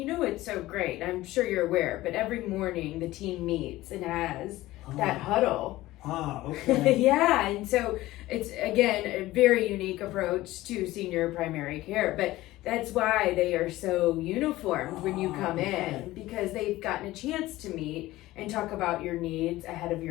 so great, I'm sure you're aware, but every morning the team meets and has that huddle. Okay. Yeah, and so it's again a very unique approach to senior primary care, but that's why they are so uniformed when you come okay. in, because they've gotten a chance to meet and talk about your needs ahead of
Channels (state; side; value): quieter; right; 17.2 dB